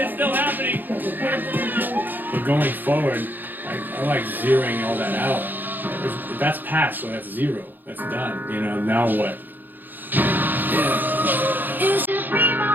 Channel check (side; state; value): left; late; 0.088 ms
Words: still happening. But going forward, I like zeroing all that out. That's past, so that's zero. That's done. You know, now what? It's just me,